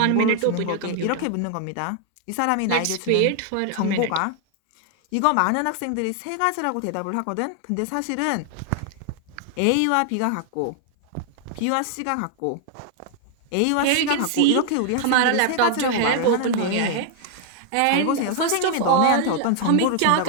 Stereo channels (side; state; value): both; different; correlation 0.00